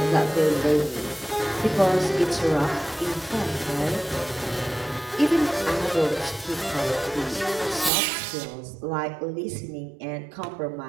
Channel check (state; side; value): drops out; left; at 7.9 s